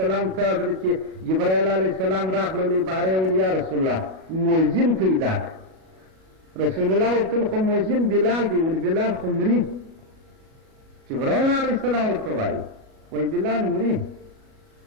ته حضرت جبرائیل علیه السلام راغللی باره یې ویل یا رسول الله مؤذن پیدا کړه. رسول الله ورته خو مؤذن بلال دی. ول بلال خو مري. جبرائیل علیه السلام ورته وایي وایي بلال مري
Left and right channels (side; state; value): left; late; 37 ms